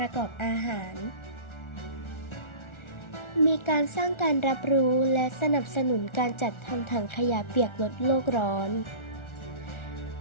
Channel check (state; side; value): late; right; 1.4 ms